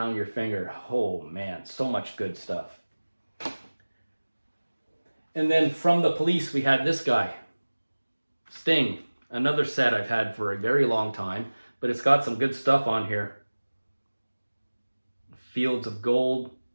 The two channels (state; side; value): inverted; both; correlation -1.00